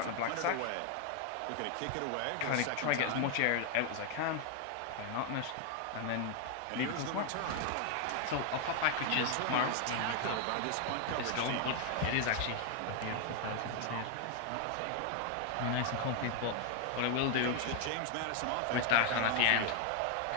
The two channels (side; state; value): both; different; correlation 0.00